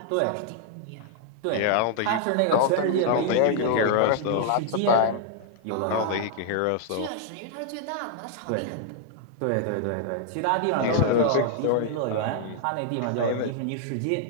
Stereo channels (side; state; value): both; different; correlation -0.01